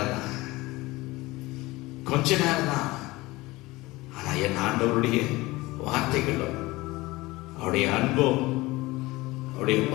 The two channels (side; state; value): right; quieter; 20.6 dB